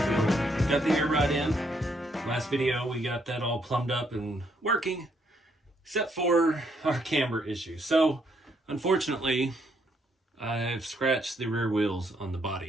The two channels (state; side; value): normal; both; correlation 0.73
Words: Got the air rod in. Last video we got that all plumbed up and working, except for our camber issue. So unfortunately, I've scratched the rear wheels on the